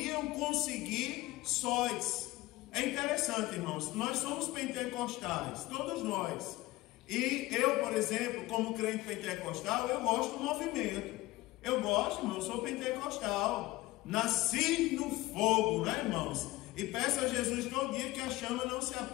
conseguir sós. É interessante, irmãos, nós somos pentecostais, todos nós. E eu, por exemplo, como crente pentecostal, eu gosto do movimento. Eu gosto, irmão, eu sou pentecostal. Nasci no fogo, né, irmãos? E peço a Jesus todo dia que a chama não se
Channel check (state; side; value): quieter; right; 19.0 dB